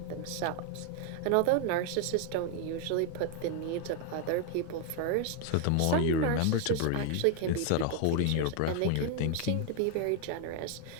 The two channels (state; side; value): different; both; correlation 0.00